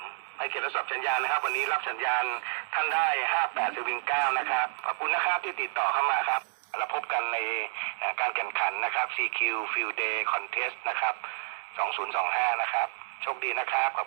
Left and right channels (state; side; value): silent; left; digital silence